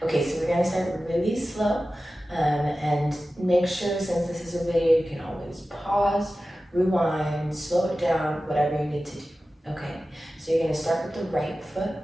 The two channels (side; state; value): both; normal; correlation 0.95